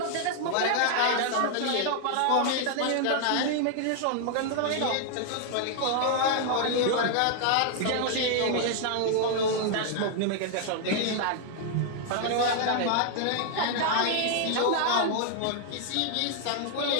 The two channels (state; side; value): different; both; correlation 0.00